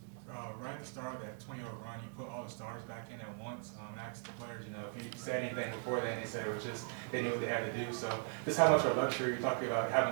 Right at the start of that 20-0 run, you put all the stars back in at once. Asked the players, if you said anything before then, they said it was just they knew what they had to do. So just how much of a luxury you're talking about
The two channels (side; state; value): left; silent; 52 dB below the other